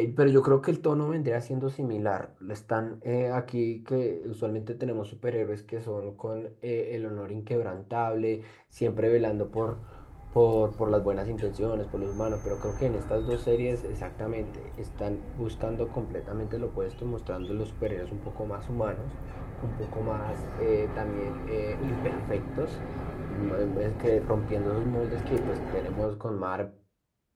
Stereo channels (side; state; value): both; identical; correlation 1.00